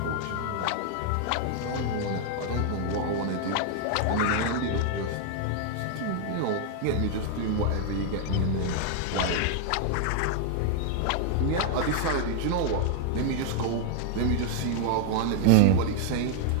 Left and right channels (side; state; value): both; different; correlation 0.00